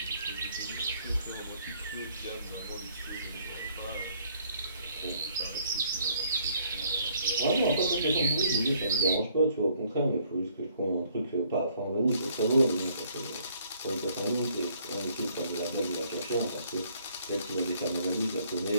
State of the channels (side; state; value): both; inverted; correlation -0.64